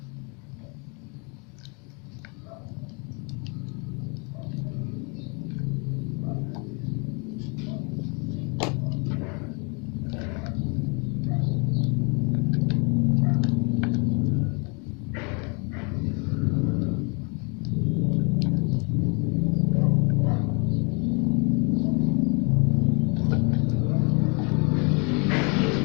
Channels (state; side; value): quieter; right; 33.2 dB